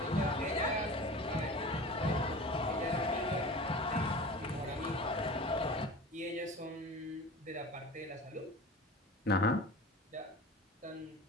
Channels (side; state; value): both; normal; correlation 0.36